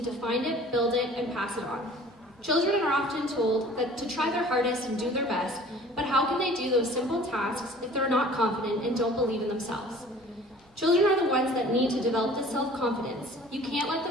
to find it, build it, and pass it on. Children are often told that to try their hardest and do their best, but how can they do those simple tasks if they're not confident and don't believe in themselves? Children are the ones that need to develop this self-confidence. You can't let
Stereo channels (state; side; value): normal; both; correlation 0.48